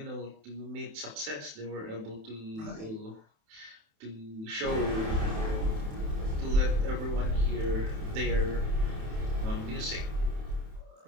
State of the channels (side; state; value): left; late; 27 ms